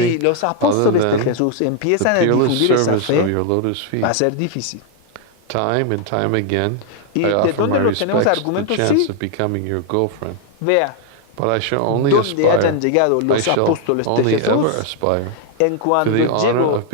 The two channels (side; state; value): both; different; correlation 0.00